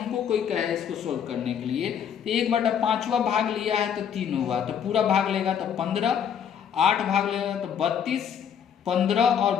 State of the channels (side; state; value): right; quieter; 8.2 dB